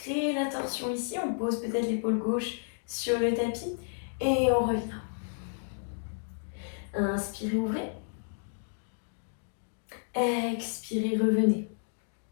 la torsion ici, on pose peut-être l'épaule gauche sur le tapis et on revient. Inspirez, ouvrez. Expirez, revenez.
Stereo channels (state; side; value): silent; right; digital silence